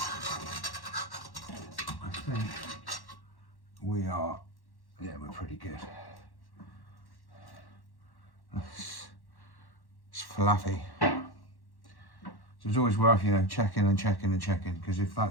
I think we are, yeah, we're pretty good. It's fluffy. So it's always worth, you know, checking, because if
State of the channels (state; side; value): late; right; 1.1 ms